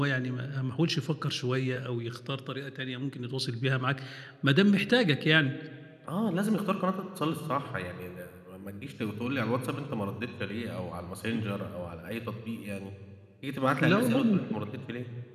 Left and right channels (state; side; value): identical; both; correlation 1.00